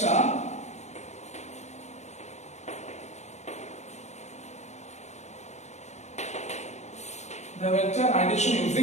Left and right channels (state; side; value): late; right; 0.33 ms